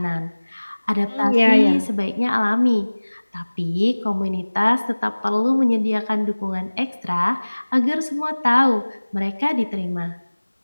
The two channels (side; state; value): both; inverted; correlation -1.00